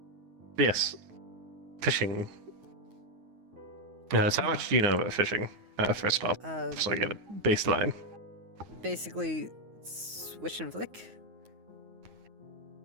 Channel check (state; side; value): late; left; 9.4 ms